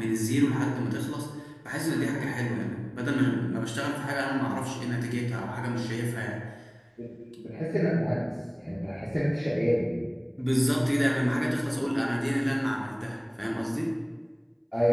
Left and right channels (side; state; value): both; identical; correlation 1.00